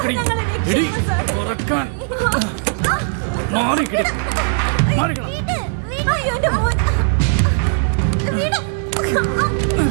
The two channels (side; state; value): left; silent; digital silence